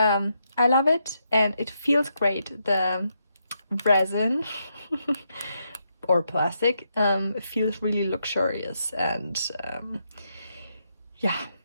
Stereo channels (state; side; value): inverted; both; correlation -0.80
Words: love it and it feels great. The resin or plastic feels really luxurious, and yeah,